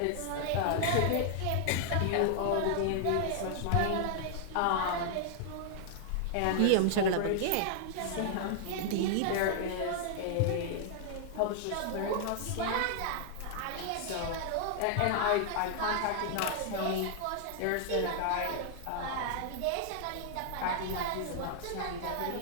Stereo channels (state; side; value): different; both; correlation -0.01